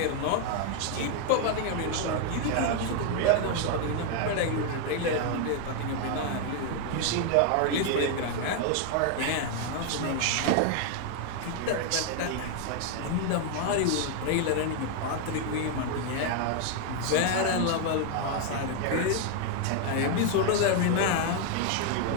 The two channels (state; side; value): different; both; correlation 0.00